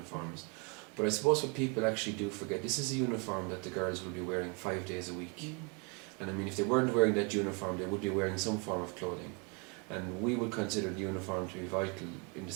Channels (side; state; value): left; quieter; 33.4 dB